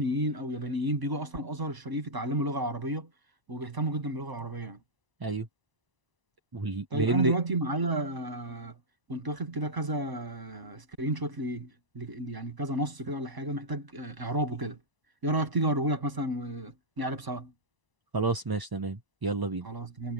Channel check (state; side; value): late; left; 1.0 ms